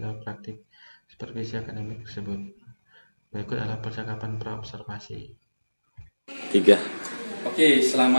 dalam praktik supervisi akademik tersebut. Berikut adalah percakapan praobservasi. 3. Oke,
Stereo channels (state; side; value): inverted; both; correlation -1.00